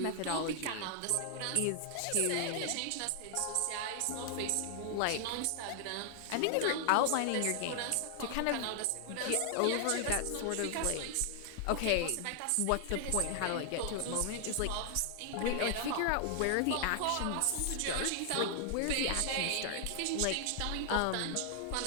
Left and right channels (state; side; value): different; both; correlation 0.00